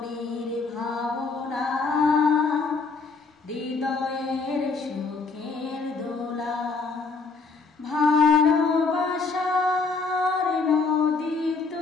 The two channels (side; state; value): right; quieter; 4.3 dB